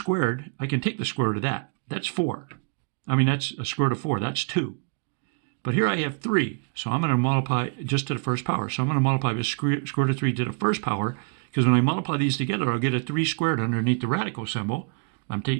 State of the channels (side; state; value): left; quieter; 36.1 dB